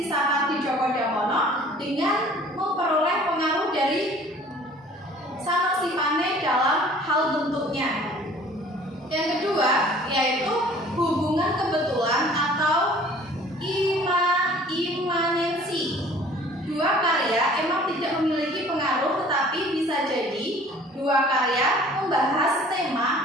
Sapardi Djoko Damono dengan memperoleh pengaruh dari Sanosipane dalam hal bentuknya. Yang kedua yaitu hubungan kebetulan atau imanensi. Dua karya emang tidak memiliki pengaruh, tetapi bisa jadi dua karya membahas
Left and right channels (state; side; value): normal; both; correlation 0.51